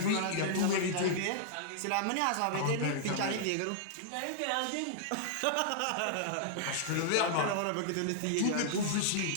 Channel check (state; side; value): different; both; correlation -0.01